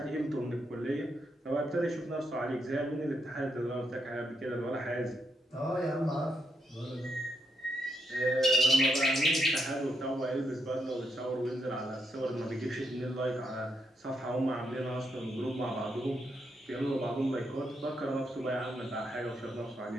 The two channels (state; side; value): normal; both; correlation 0.80